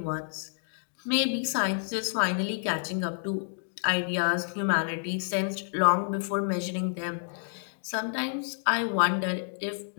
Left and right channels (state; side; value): silent; right; digital silence